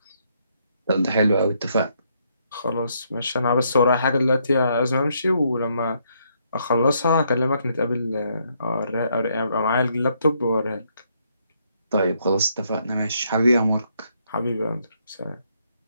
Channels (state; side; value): inverted; both; correlation -0.73